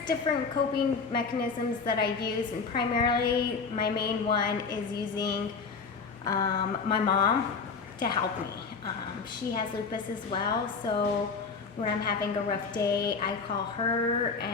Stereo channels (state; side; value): quieter; right; 5.0 dB